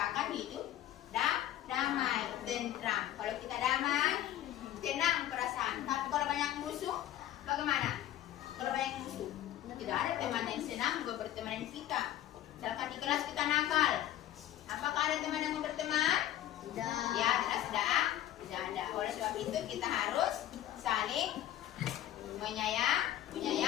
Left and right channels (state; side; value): quieter; right; 12.8 dB